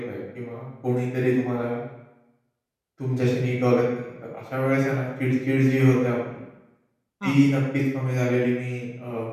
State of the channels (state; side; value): identical; both; correlation 1.00